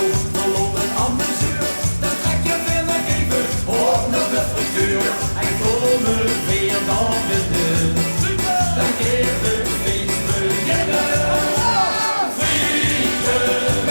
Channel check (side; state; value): both; inverted; correlation -1.00